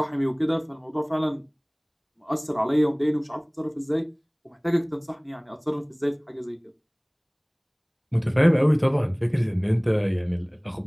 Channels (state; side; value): identical; both; correlation 1.00